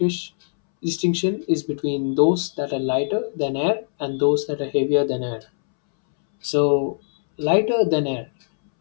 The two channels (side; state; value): right; silent; 64 dB below the other